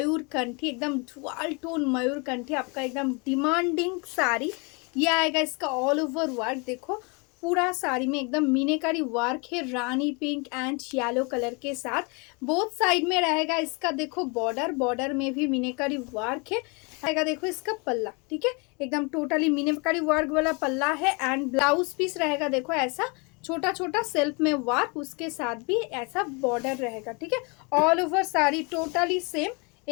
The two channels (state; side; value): quieter; right; 31.2 dB